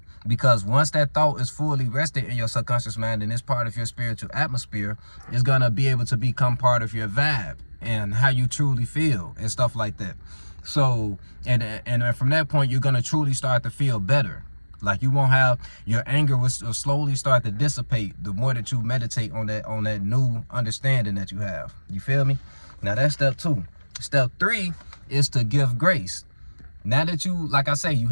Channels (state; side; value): inverted; both; correlation -1.00